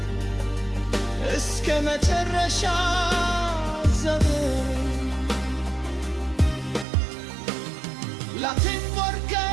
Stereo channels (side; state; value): left; drops out; at 6.9 s